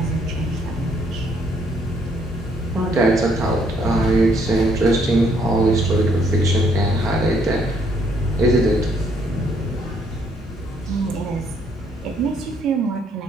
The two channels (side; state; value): both; normal; correlation 0.69